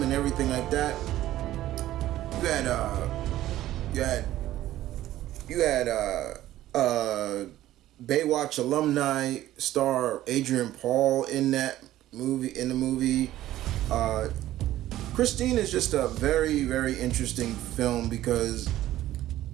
and everything like that. You had Baywatch alumni star Adrian Paul in the movie. Christine is just a very, very interesting film because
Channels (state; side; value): quieter; left; 14.2 dB